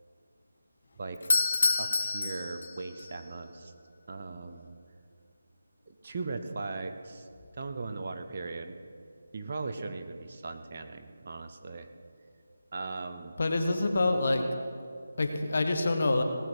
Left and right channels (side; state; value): both; inverted; correlation -0.92